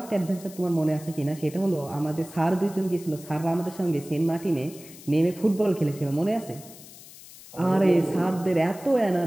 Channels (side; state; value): left; noise; hiss, 18 dB below the sound